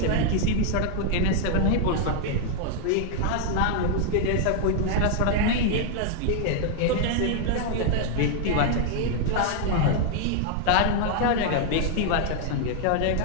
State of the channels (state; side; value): different; both; correlation 0.00